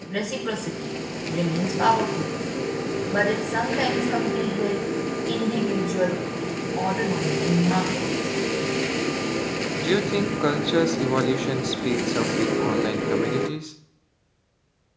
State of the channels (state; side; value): identical; both; correlation 1.00